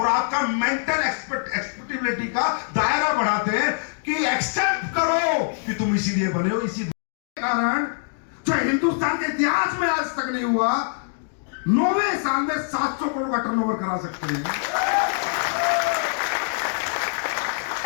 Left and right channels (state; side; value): silent; right; digital silence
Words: आपका मेंटल एक्सपेक्टेबिलिटी का दायरा बढ़ाते हैं कि एक्सेप्ट करो कि तुम इसीलिए बने हो। इसी कारण जो हिंदुस्तान के इतिहास में आज तक नहीं हुआ, 9वें साल में 700 करोड़ का टर्नओवर करा सकते हैं,